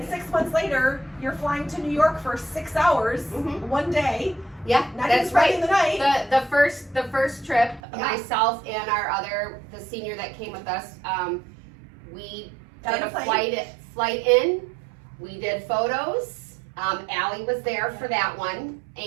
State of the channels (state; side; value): drops out; left; at 7.8 s